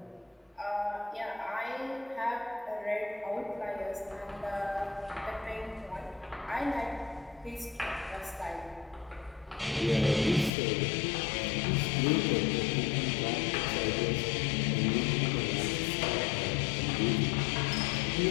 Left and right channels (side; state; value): right; drops out; at 10.5 s